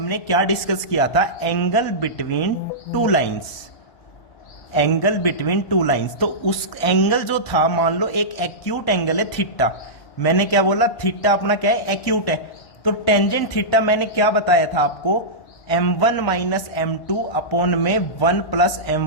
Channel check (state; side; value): late; right; 1.1 ms